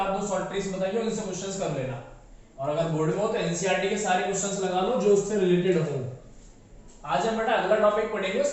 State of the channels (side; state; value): both; identical; correlation 1.00